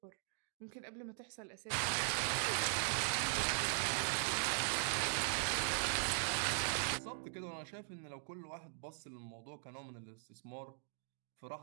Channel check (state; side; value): silent; left; digital silence